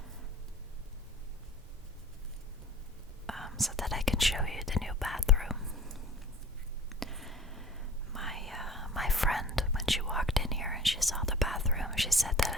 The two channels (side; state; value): both; normal; correlation 0.46